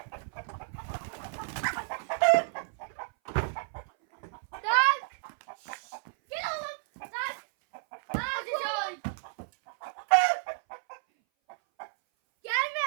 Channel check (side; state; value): left; silent; 57 dB below the other